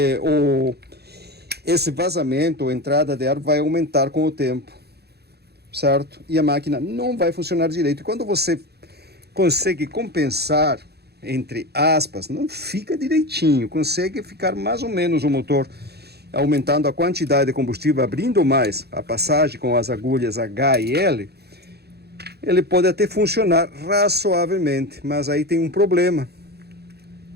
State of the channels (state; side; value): late; left; 0.47 ms